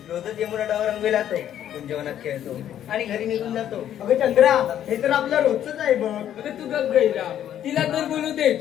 रोजच यमुना डावर रंगवे जातो, जेवणात खेळतो आणि घरी निघून जातो. अगं चंद्रा, हे तर आपलं रोजच आहे बघ. अगं तू गप गैरा, तिला तर बोलू दे.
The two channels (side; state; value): right; quieter; 10.7 dB